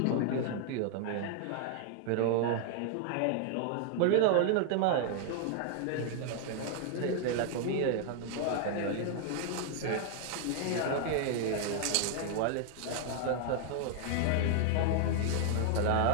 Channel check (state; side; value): different; both; correlation 0.00